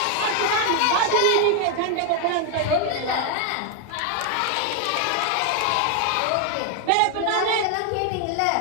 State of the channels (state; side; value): different; both; correlation 0.01